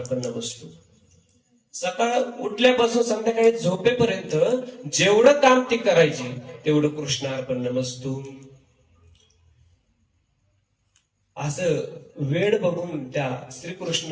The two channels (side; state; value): both; identical; correlation 1.00